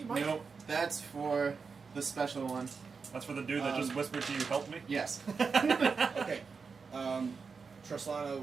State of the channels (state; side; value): quieter; left; 5.2 dB